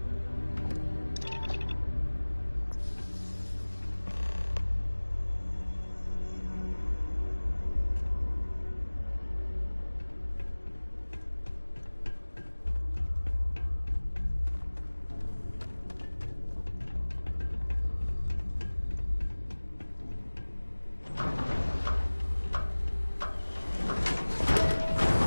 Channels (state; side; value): inverted; both; correlation -1.00